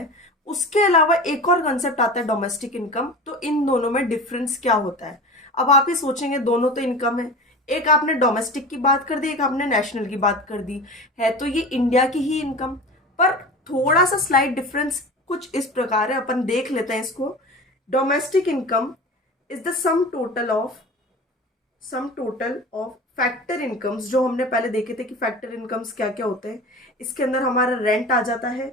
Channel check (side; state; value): both; normal; correlation 0.33